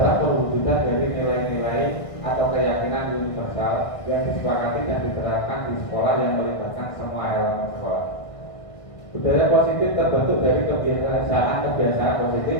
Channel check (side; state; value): right; late; 1.5 ms